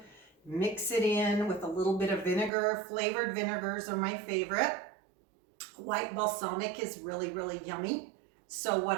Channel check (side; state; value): left; drops out; at 2.5 s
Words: mix it in with a little bit of vinegar. Flavored vinegars are my favorite. White balsamic is really, really yummy. So